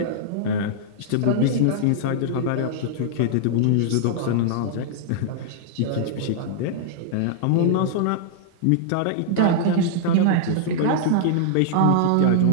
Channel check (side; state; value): both; different; correlation -0.01